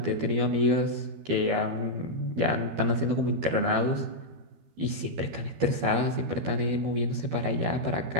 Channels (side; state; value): left; late; 12 ms